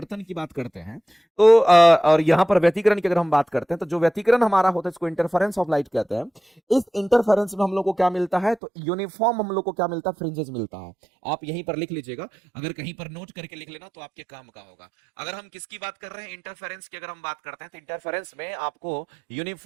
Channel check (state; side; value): drops out; left; at 8.6 s